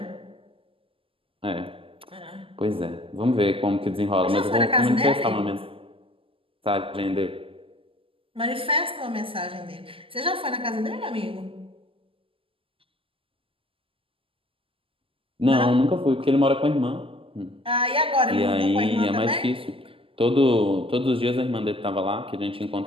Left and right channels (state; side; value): late; left; 0.26 ms